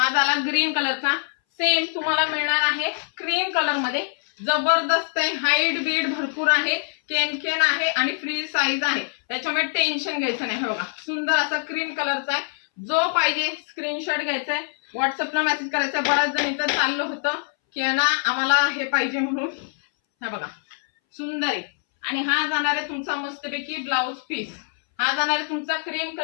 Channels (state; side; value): silent; right; 61 dB below the other